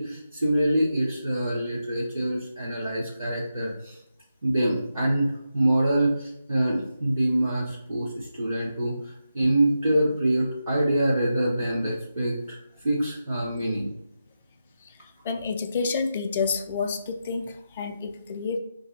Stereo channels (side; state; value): both; inverted; correlation -0.88